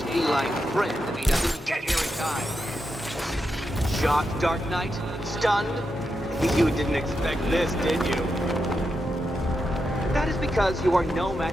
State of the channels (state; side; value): normal; both; correlation 0.86